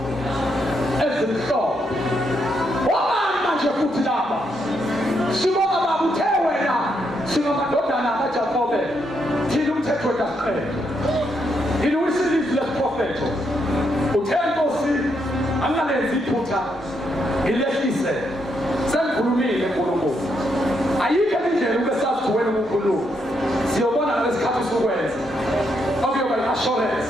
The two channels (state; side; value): normal; both; correlation 0.78